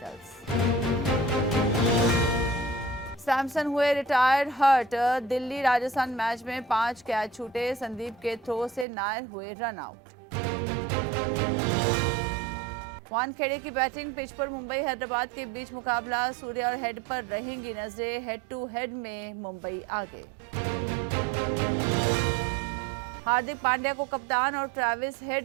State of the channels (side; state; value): left; drops out; at 8.8 s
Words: सैमसन हुए retired hurt, Delhi Rajasthan match में 5 कैच छूटे, संदीप के थ्रो से नायर हुए रन आउट। वानखेड़े की बैटिंग पिच पर मुंबई हैदराबाद के बीच मुकाबला, सूर्य और हेड पर रहेंगी नजरें, हेड टू हेड में मुंबई आगे। हार्दिक पांड्या को कप्तान और ट्रेविस